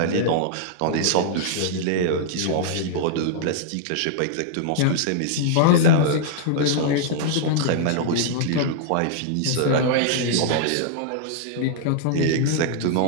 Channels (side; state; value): both; different; correlation -0.01